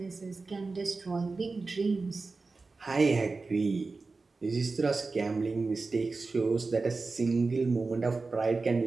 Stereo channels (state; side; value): quieter; left; 3.9 dB